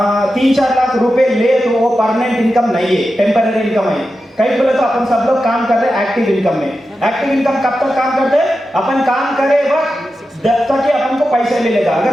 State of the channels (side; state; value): both; normal; correlation 0.91